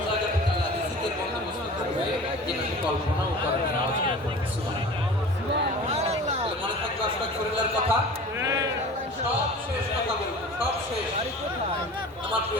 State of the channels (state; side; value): normal; both; correlation 0.39